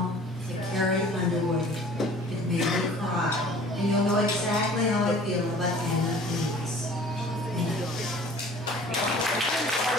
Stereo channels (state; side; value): normal; both; correlation 0.48